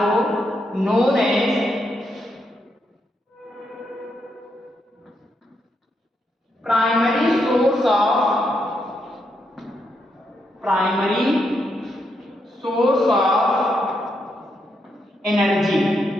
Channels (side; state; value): both; normal; correlation 0.80